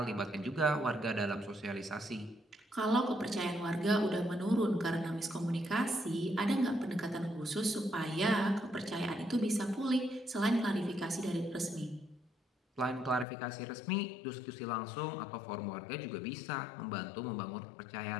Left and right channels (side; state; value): right; drops out; at 13.2 s